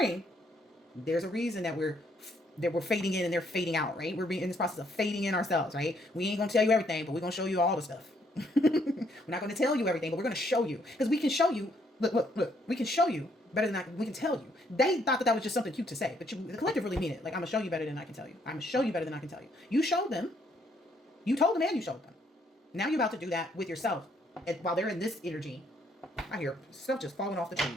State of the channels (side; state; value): both; normal; correlation 0.70